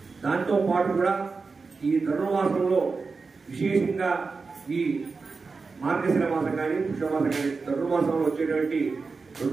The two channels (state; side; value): quieter; left; 4.5 dB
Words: దాంతో పాటు కూడా ఈ ధనుర్మాసంలో విశేషంగా ఈ మార్గశిర మాసం కానీ పుష్యమాసం కానీ ధనుర్మాసంలో వచ్చేటువంటి